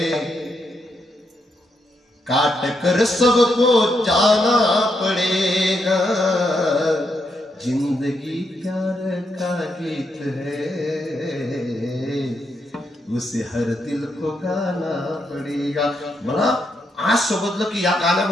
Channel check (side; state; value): both; normal; correlation 0.80